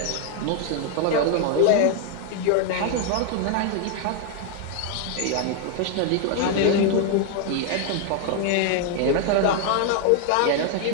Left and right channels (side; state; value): both; different; correlation 0.01